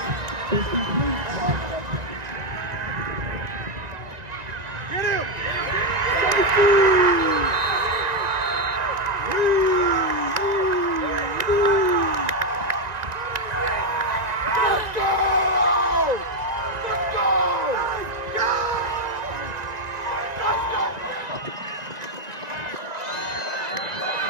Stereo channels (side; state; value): left; late; 1.9 ms